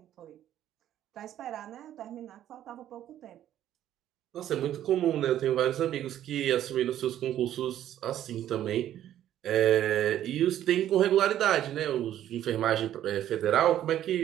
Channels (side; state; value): left; quieter; 11.7 dB